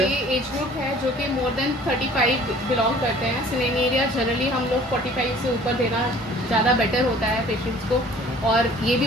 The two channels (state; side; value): normal; both; correlation 0.51